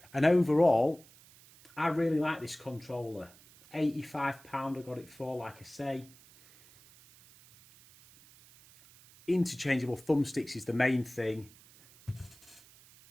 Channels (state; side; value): noise; right; hiss, 24 dB below the sound